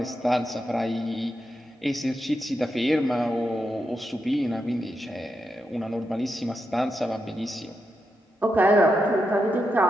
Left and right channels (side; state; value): both; normal; correlation 0.85